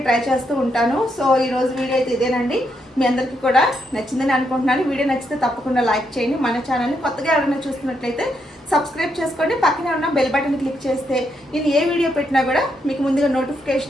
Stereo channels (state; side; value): normal; both; correlation 0.79